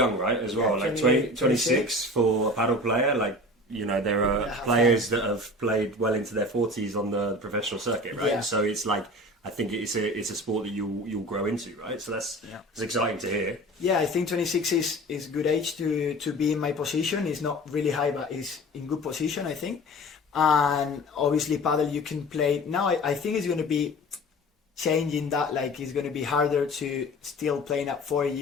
right? As well, like 26 for a paddle player, like. You know, there are players that have played well into their 40s on the professional circuit, right? Yeah. So it's like, I think it's a sport that you'll grow into, right? So that's exciting to hear. Yeah, I think 26 is good age to be in my position. It's not really high, but it's in good position, I think. And obviously, paddle you can play now. I think it's going to be changing that. Like it's going to be harder to still playing at 4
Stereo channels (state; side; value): normal; both; correlation 0.39